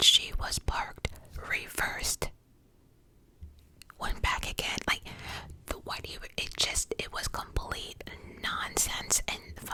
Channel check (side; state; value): both; identical; correlation 1.00